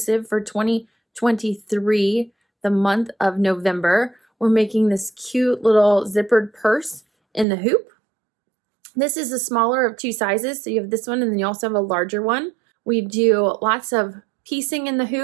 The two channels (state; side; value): drops out; left; at 7.5 s